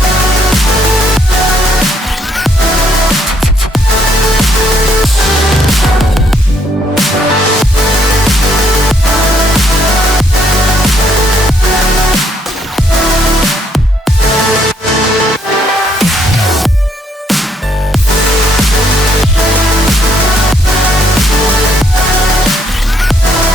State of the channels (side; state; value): both; normal; correlation 0.70